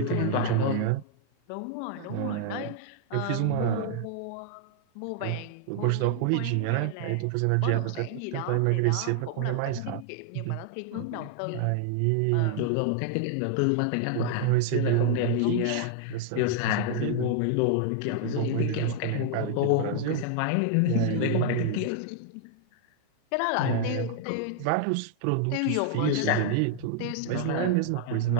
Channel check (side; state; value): both; different; correlation 0.00